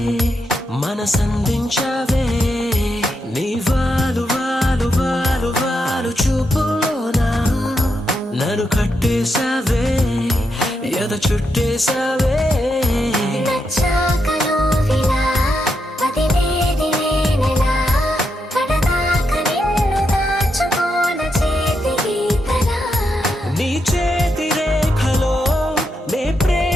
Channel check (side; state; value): both; normal; correlation 0.83